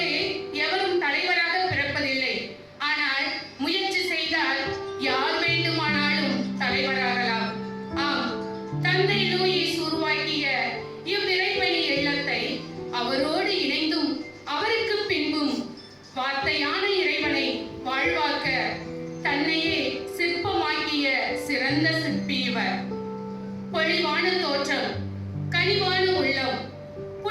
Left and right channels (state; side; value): identical; both; correlation 1.00